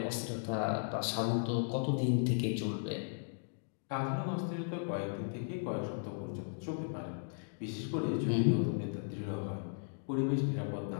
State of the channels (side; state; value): right; silent; digital silence